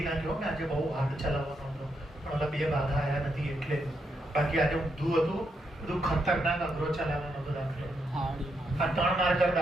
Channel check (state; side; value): normal; both; correlation 0.80